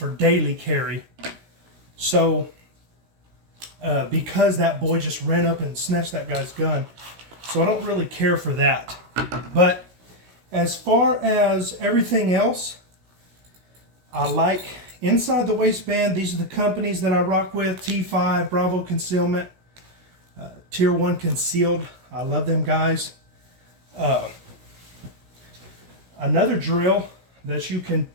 daily carry. So because that boy just ran up and snatched that guy's gun, so I don't really care for that. But as far as everything else, I like inside the waistband. These are the companies that I rock with: T5, Bravo Concealment, Tier 1 Concealed. I love them guys. Another drill that you can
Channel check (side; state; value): left; late; 16 ms